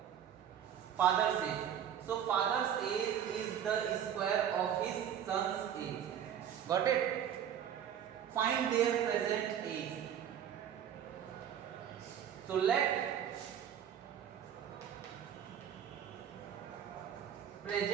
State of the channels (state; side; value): quieter; left; 9.3 dB